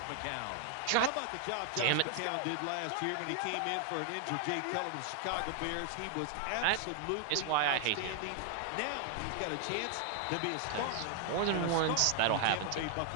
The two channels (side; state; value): both; different; correlation 0.00